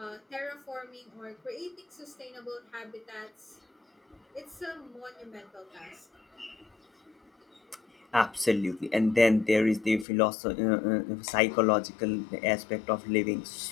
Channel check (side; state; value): right; drops out; at 10.1 s